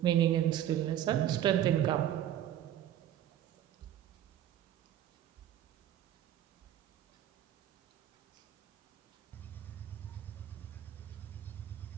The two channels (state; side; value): quieter; left; 11.5 dB